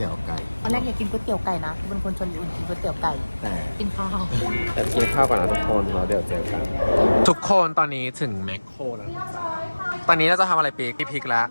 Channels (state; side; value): inverted; both; correlation -1.00